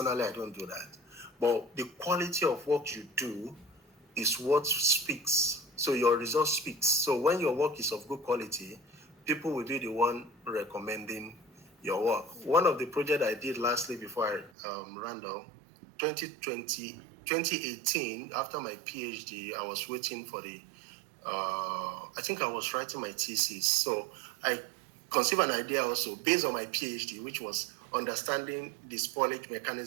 do that. But the quality of what you do is what speaks. So your result speaks. So when your work is of good quality, people will be the one recommending your work. One of the projects I did lastly before I ran down, 2018, after my PhD, I was waiting for the, I think I was writing my thesis. So I conceived an idea also based on my PhD, which was understanding the spoilage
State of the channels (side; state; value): left; drops out; at 14.5 s